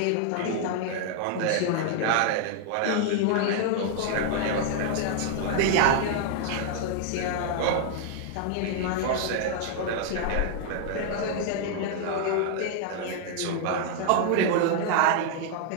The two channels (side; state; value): both; different; correlation 0.00